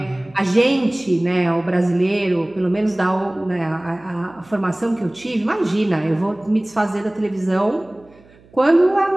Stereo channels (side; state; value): right; noise; hum, 28 dB below the sound